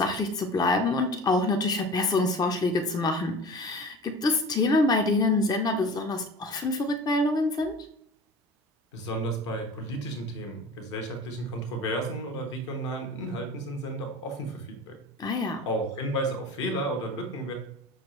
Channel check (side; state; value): both; normal; correlation 0.38